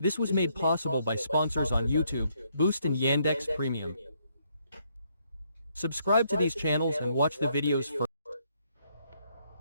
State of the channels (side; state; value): both; inverted; correlation -0.72